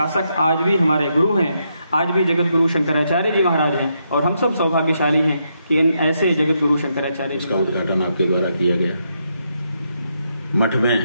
आज भी हमारे गुरु हैं, आज भी जगत गुरु शंकराचार्य जी महाराज हैं। और हम सब सौभाग्यशाली हैं कि इन ऐसे जगत गुरु शंकराचार्य इसका उद्घाटन आपके द्वारा किया गया। मठ में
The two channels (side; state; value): both; inverted; correlation -0.80